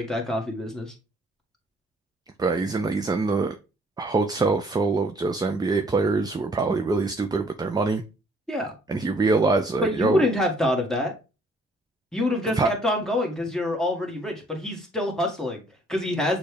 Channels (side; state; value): both; normal; correlation 0.61